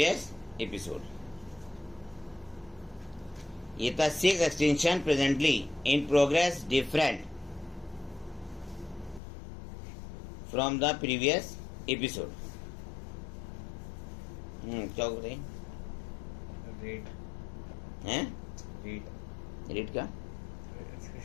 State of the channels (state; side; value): drops out; right; at 9.2 s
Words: episode। ये था 6 extinction presently in progress different from the previous episode। क्या बताइए? रेट हैं? रेट रेट का